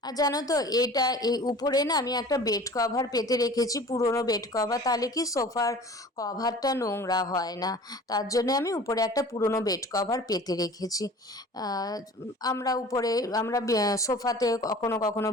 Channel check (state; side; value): normal; both; correlation 0.43